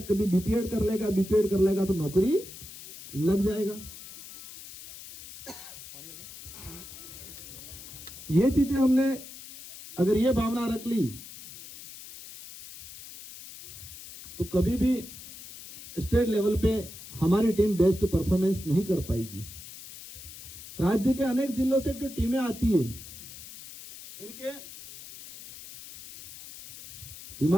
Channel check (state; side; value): noise; left; hiss, 15 dB below the sound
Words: कभी बीपीएड कर लेगा तो नौकरी लग जाएगा। ये चीजें हमने अगर ये भावना रख ली तो कभी भी स्टेट लेवल पे हमारी टीम बेस्ट परफॉर्मेंस नहीं कर पाएगी। राज्य के अनेक जिलों से जो टीमें आती है, इनके